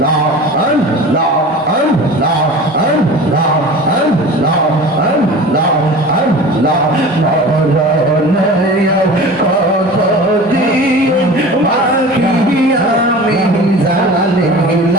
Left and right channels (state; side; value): normal; both; correlation 0.37